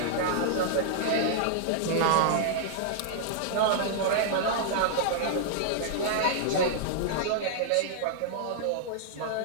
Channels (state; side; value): different; both; correlation -0.01